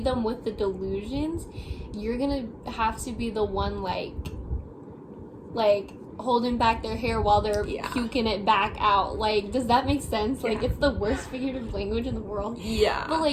them with the delusions, you're gonna have to be the one like holding back their hair while they're puking it back out. Like, does that make sense? Like, it's the worst figurative language in the world. But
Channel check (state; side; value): identical; both; correlation 1.00